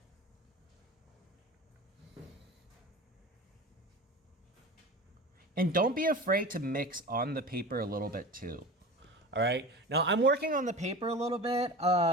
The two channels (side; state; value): both; normal; correlation 0.34